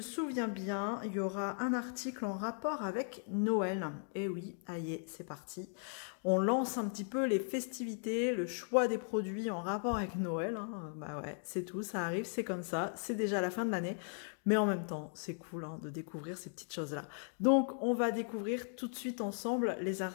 bien, il y aura un article en rapport avec Noël. Et oui, aïe, c'est parti. On lance un petit peu les festivités, le choix des produits en rapport avec Noël. Hein. Bah ouais, c'est tout, ça arrive, c'est comme ça, c'est déjà la fin de l'année. Mais en même temps, c'est cool de découvrir ces petites choses-là. Donc, on va découvrir tout de suite ensemble les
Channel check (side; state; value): right; silent; 53 dB below the other